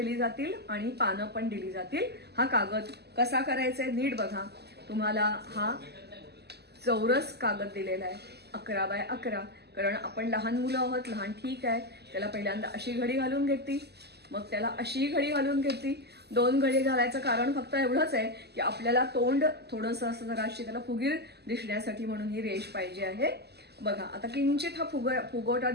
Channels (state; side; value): late; left; 0.48 ms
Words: जातील आणि पानं पण दिली जातील. हा कागद कसा करायचा आहे नीट बघा. तुम्हाला हा चौरस कागद दिलेला आहे 11x11, कारण आपण लहान मुलं आहोत. लहान ठीक आहे, त्याला पहिल्यांदा अशी घडी घालून घेतली, मग त्याला अशी घडी घालून घेतली. 2 घडी घालायचं कारण फक्त एवढंच आहे की आपल्याला तोंड थोडंसं असं जराशी त्याला फुगीर दिसण्यासाठी, म्हणून ही रेष पाहिजे आहे. बघा आता किंचित हा फुगवटा